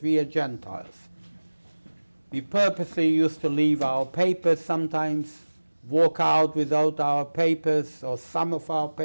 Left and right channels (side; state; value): both; inverted; correlation -1.00